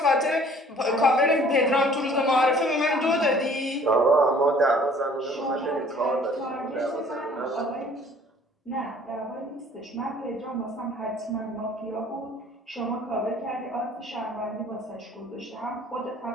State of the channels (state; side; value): normal; both; correlation 0.54